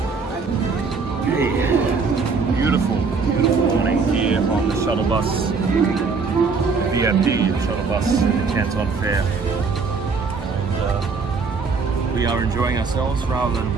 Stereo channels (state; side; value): quieter; left; 4.8 dB